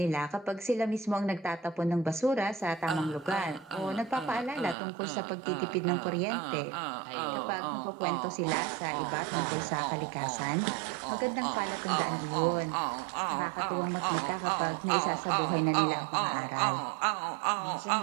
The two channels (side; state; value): left; drops out; at 4.8 s